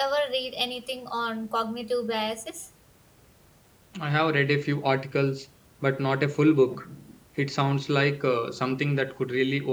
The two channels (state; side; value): identical; both; correlation 1.00